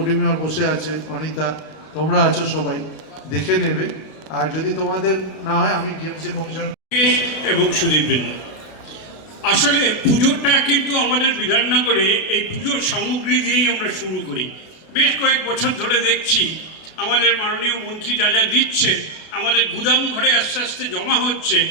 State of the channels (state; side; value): late; right; 32 ms